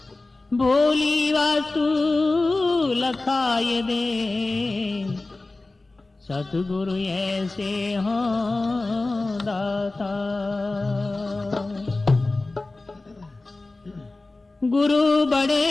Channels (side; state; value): right; quieter; 3.2 dB